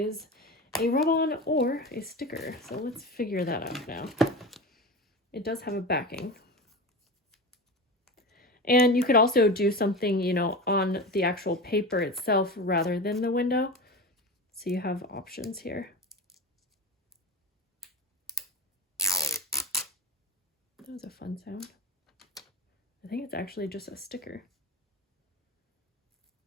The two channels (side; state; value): both; normal; correlation 0.27